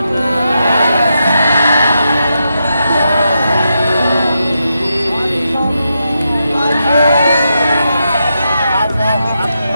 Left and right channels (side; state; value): both; inverted; correlation -0.85